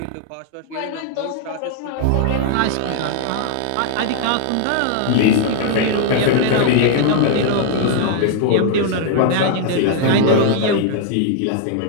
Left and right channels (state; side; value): different; both; correlation -0.01